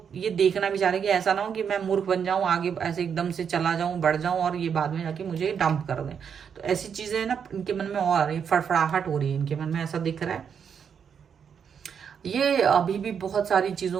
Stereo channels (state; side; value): quieter; left; 7.3 dB